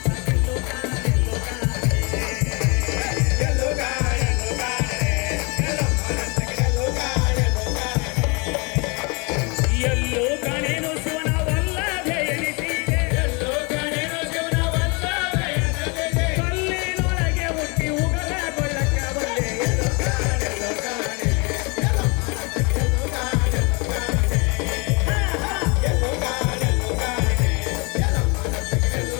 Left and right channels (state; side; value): quieter; right; 30.5 dB